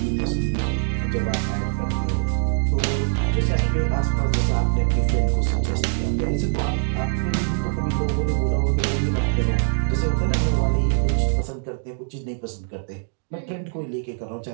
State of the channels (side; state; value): left; silent; digital silence